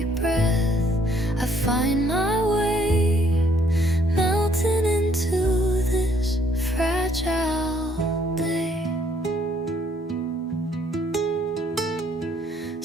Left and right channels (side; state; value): both; normal; correlation 0.65